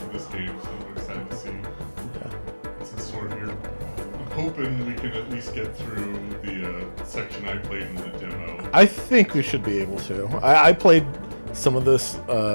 this game, so I'm excited to see what's in store here. I'm hoping we can at least get through the section I played in the demo. I think we should be able to. I played some of this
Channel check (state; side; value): inverted; both; correlation -1.00